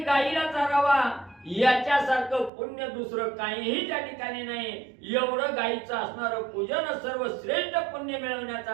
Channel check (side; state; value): left; drops out; at 2.5 s